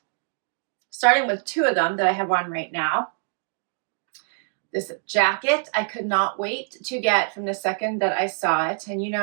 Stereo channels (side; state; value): left; silent; digital silence